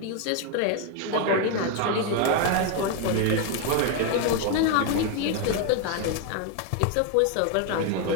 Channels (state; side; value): different; both; correlation 0.01